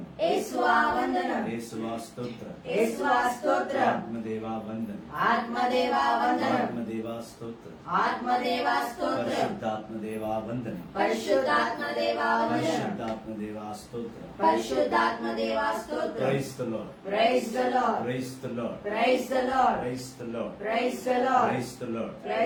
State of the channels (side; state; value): both; identical; correlation 1.00